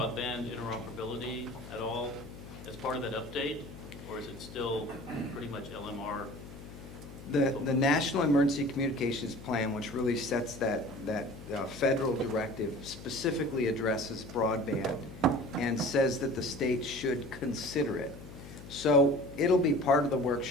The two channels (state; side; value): noise; left; hum, 15 dB below the sound